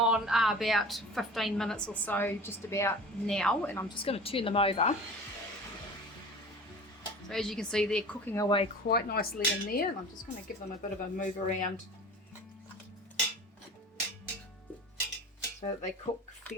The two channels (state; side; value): normal; both; correlation 0.38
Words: about 15 minutes or so, just about now, and I'm just going to turn them over. So as you can see, they're cooking away quite nicely in there, and I'm just going to give them a bit of a move around so that they cook